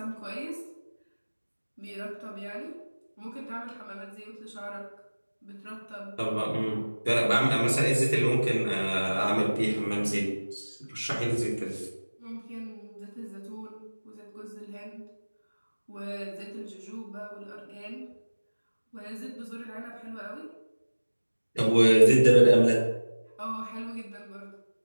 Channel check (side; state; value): both; inverted; correlation -1.00